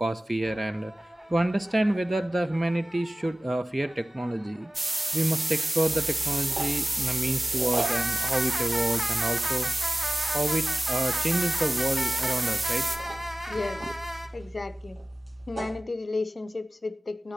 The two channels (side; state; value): both; normal; correlation 0.97